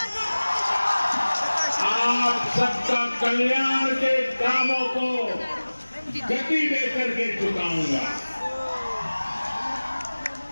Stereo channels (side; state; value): both; inverted; correlation -1.00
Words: आप सबका कल्याण के कामों को गति देकर के चुकाऊंगा।